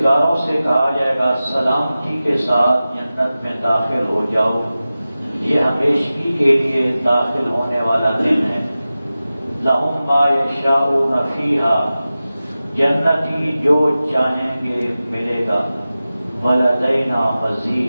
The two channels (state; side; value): inverted; both; correlation -0.95